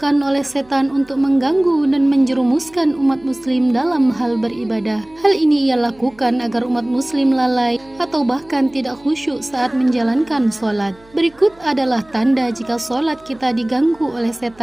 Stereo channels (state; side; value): noise; right; hum, 28 dB below the sound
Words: oleh setan untuk mengganggu dan menjerumuskan umat muslim dalam hal beribadah. Hal ini ia lakukan agar umat muslim lalai atau bahkan tidak khusyuk saat menjalankan sholat. Berikut adalah tanda jika sholat kita diganggu oleh